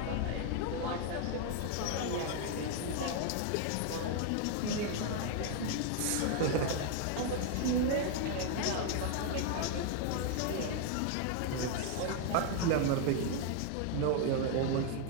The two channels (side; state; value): both; different; correlation 0.00